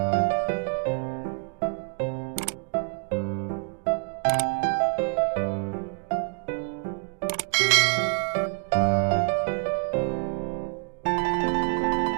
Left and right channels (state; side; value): quieter; left; 37.2 dB